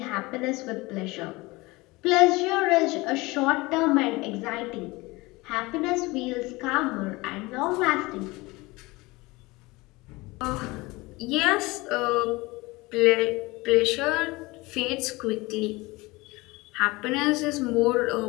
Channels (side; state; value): right; quieter; 22.5 dB